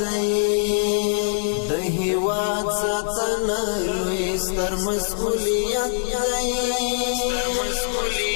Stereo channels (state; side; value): silent; right; digital silence